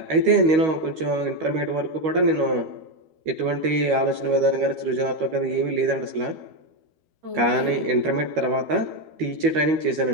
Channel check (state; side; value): late; left; 13 ms